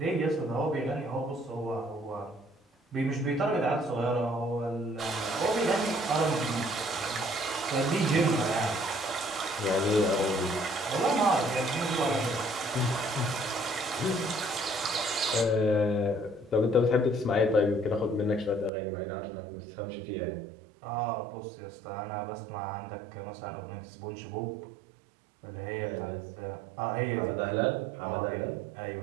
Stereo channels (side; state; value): left; drops out; at 18.7 s